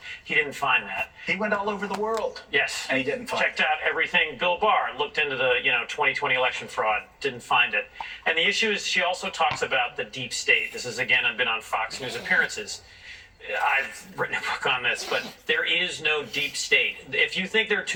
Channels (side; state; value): both; identical; correlation 1.00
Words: He didn't find that. He went all over the world. Yes. And he didn't find Checked out everything. Bill Barr looked into the 2020 election fraud, didn't find it. And the issue is she also talks about the deep state. This is, again, I've been on Fox News appearances. I've written a book on this, but there is no deep state. If you think there are